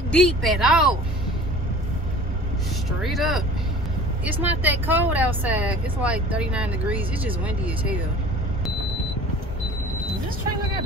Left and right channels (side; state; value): both; normal; correlation 0.44